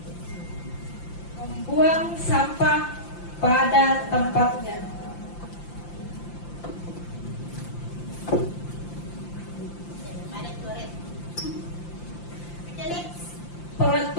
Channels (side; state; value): right; late; 5.8 ms